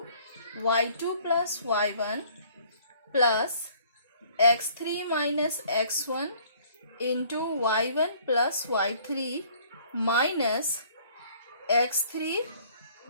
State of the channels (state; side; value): inverted; both; correlation -0.57